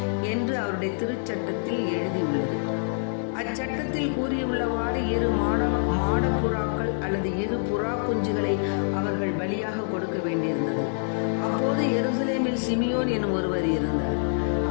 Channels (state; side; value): silent; right; digital silence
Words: என்று அவருடைய திருச்சட்டத்தில் எழுதியுள்ளது. அச்சட்டத்தில் கூறியுள்ளவாறு 2 மாடப்புறாக்கள் அல்லது 2 புறா குஞ்சுகளை அவர்கள் பலியாக கொடுக்க வேண்டியிருந்தது. அப்போது எருசலேமில் சிமியோன் எனும் ஒருவர் இருந்தார்.